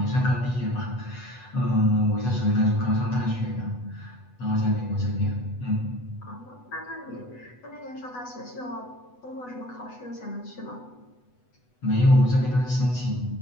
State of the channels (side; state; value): right; late; 8.1 ms